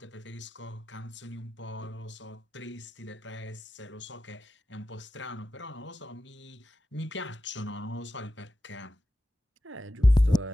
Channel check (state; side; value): normal; both; correlation 0.92